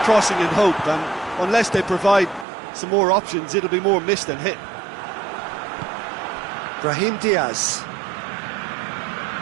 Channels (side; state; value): left; drops out; at 2.5 s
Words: in hope, and unless they provide some more options, it'll be more miss than hit. Brahim Diaz.